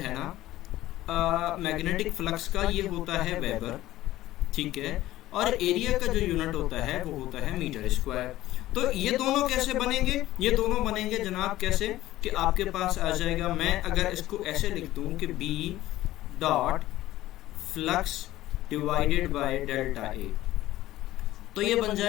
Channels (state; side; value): quieter; right; 15.5 dB